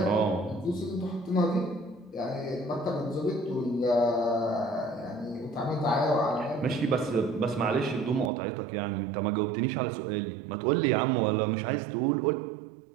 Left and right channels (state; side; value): drops out; left; at 8.3 s